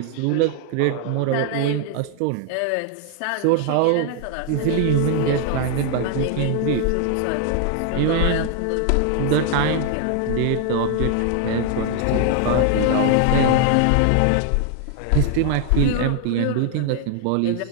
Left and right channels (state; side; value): different; both; correlation 0.00